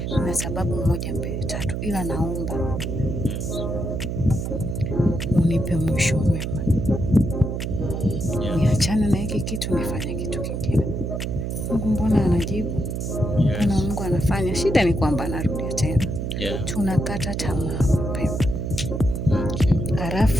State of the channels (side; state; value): right; noise; hum, 3 dB below the sound